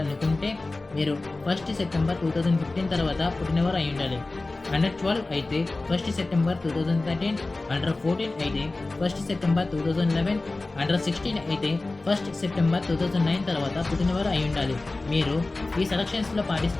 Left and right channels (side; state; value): right; quieter; 3.2 dB